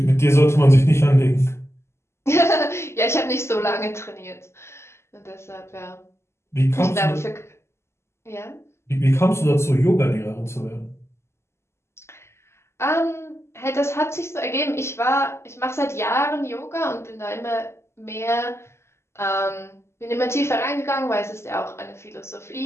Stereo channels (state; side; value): late; right; 0.13 ms